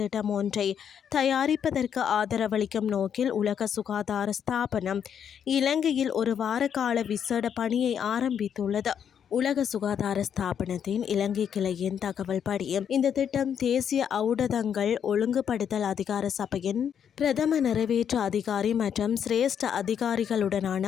ஒன்றை தயாரிப்பதற்கு ஆதரவளிக்கும் நோக்கில் உலக சுகாதார ஸ்தாபனம் இலங்கையில் ஒரு வார கால விசேட பணியை ஆரம்பித்துள்ளது. உலக சுகாதார ஸ்தாபனத்தின் இலங்கை கிளையின் தகவல் படி இந்த திட்டம் தேசிய ஊடகங்கள் ஒழுங்குபடுத்தல் அதிகார சபையின் பிரதம நிறைவேற்று அதிகாரி மற்றும் சிரேஷ்ட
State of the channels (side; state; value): right; quieter; 8.3 dB